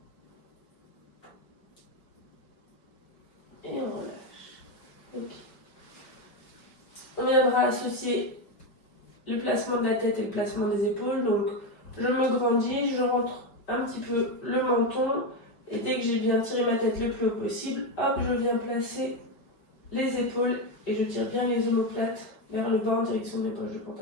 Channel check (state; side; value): late; right; 5.2 ms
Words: Et on relâche. Ok. On viendra associer le placement de la tête et le placement des épaules. Donc, je me grandis, je rentre un petit peu le menton. Et dès que j'ai bien tiré ma tête le plus haut possible, hop, je viens placer les épaules et je tire bien les omoplates vers le bas en direction de mes poches de